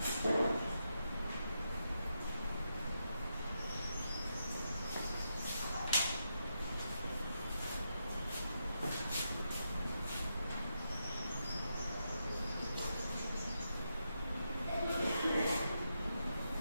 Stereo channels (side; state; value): both; inverted; correlation -0.84